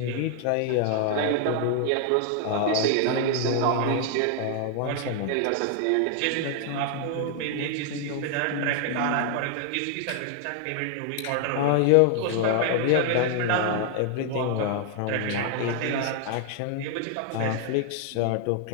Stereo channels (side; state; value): both; different; correlation 0.00